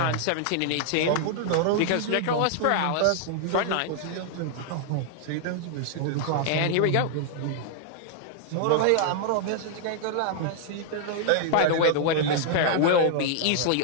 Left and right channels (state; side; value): different; both; correlation -0.01